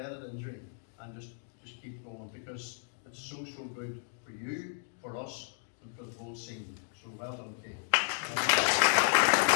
injury, and just keep going, because it's so good for you, for us, and for the whole scene. So well done, Kate.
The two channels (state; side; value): silent; right; digital silence